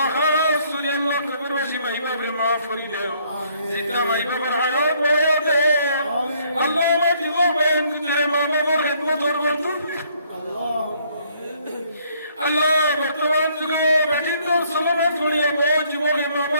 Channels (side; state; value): both; inverted; correlation -0.66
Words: রাসূল আল্লাহ কবরবাসী মাই বাপরে মাফ করে দাও জিন্দা মাই বাবার হায়াত বয়ে দাও আল্লাহ আমার জীবন বয়ান করে মা বাবার খিদমত করব আল্লাহ আল্লাহ বর্তমান যুগে বেটিন্দ সলমা ছড়িয়ে বউ জীবনে মা